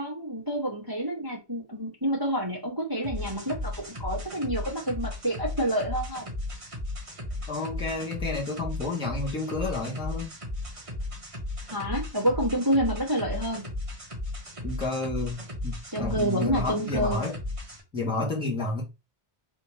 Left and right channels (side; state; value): left; late; 1.5 ms